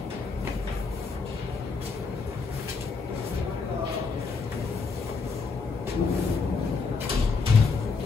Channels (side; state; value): right; quieter; 4.6 dB